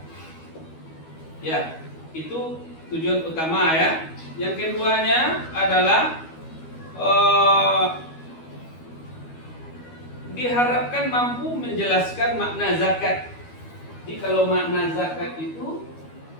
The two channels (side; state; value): right; late; 12 ms